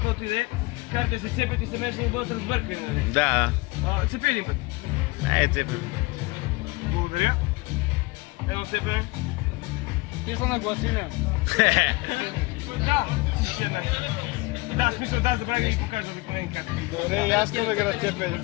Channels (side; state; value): right; quieter; 23.7 dB